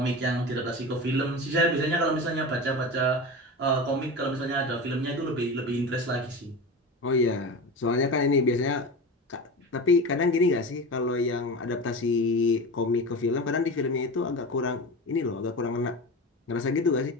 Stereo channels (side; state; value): both; normal; correlation 0.28